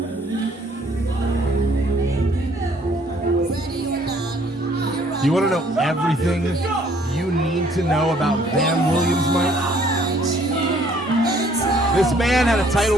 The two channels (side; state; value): both; normal; correlation 0.61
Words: You want to know everything you need to know about Van Williams, Mike? This man had a title